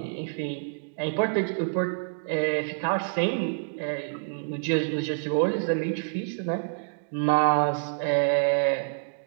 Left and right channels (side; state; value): left; silent; digital silence